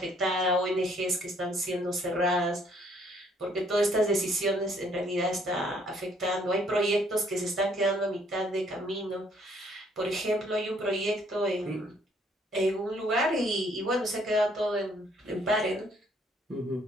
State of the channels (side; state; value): both; normal; correlation 0.65